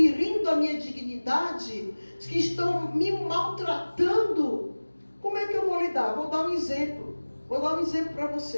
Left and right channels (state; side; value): inverted; both; correlation -1.00